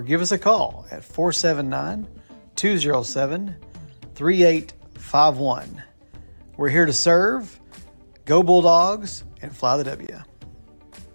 give us a call at 479-207-3851. We're here to serve. Go Bulldogs and fly the W.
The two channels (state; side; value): inverted; both; correlation -1.00